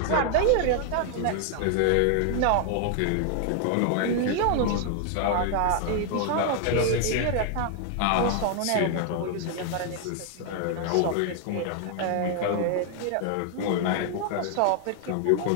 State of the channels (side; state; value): both; different; correlation 0.00